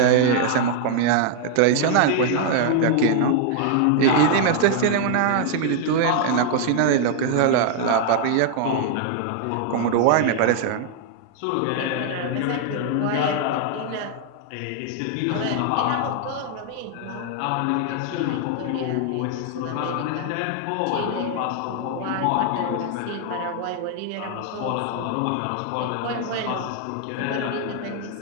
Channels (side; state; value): both; different; correlation 0.00